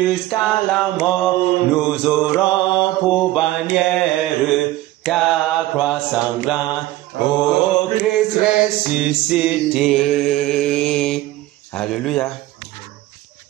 la mort. Nous aurons pour bannière ta croix sanglante, ô Christ ressuscité. Alléluia.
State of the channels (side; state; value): left; quieter; 16.5 dB